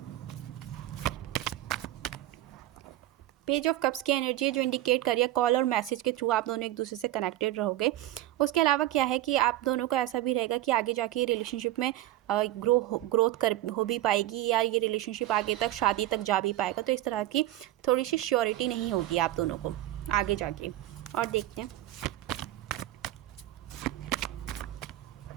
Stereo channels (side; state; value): left; quieter; 15.0 dB